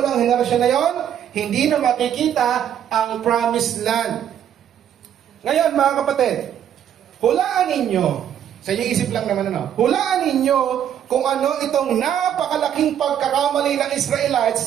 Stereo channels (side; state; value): left; quieter; 9.8 dB